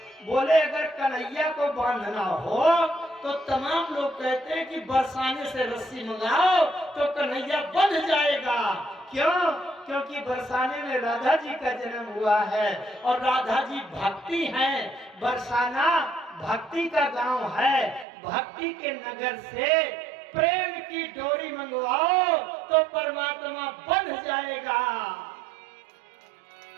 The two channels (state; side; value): drops out; left; at 18.1 s